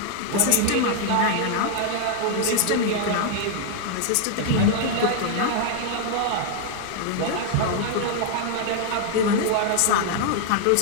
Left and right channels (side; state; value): both; different; correlation 0.00